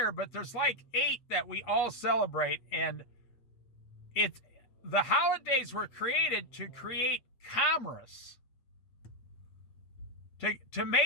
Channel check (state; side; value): late; right; 8.2 ms